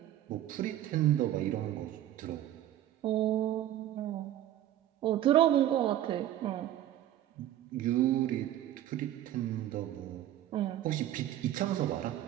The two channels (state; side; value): quieter; left; 12.7 dB